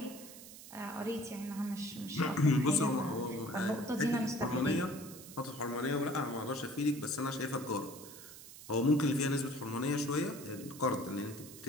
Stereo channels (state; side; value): noise; right; hiss, 15 dB below the sound